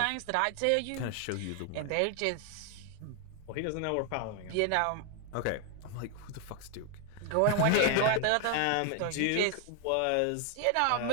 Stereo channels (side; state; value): both; different; correlation 0.00